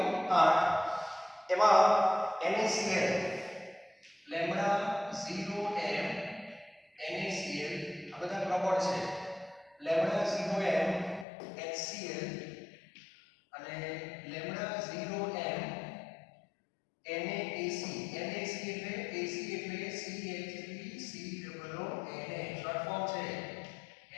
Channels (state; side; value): drops out; right; at 11.2 s